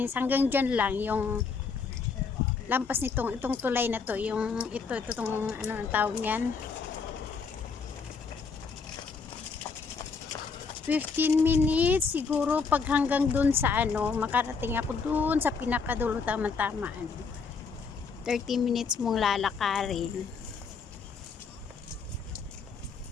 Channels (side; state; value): right; quieter; 5.2 dB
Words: Hanggang dyan lang yung lampas nitong itong tulay na to. Yung itong ano ang tawag niyan. 15 minutes siguro pag hanggang dun sa ano, makarating ako dun sa pinakadulo tama-tama ano. 30 minutes mong lalakarin.